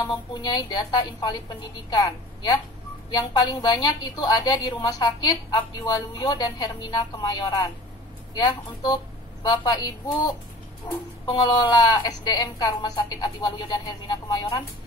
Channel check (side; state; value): both; normal; correlation 0.42